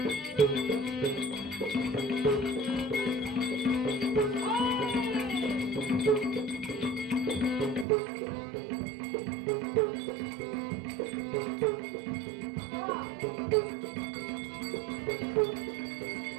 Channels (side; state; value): left; drops out; at 7.9 s